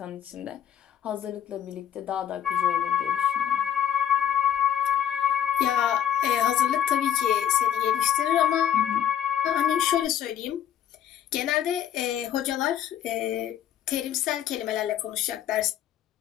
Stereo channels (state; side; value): quieter; right; 9.9 dB